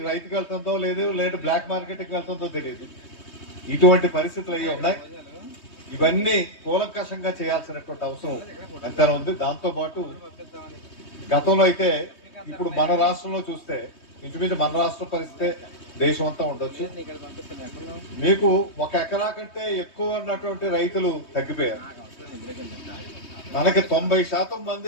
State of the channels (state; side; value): late; right; 3.2 ms